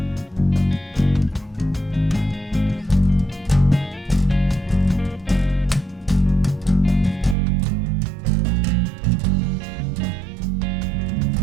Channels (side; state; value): left; drops out; at 7.4 s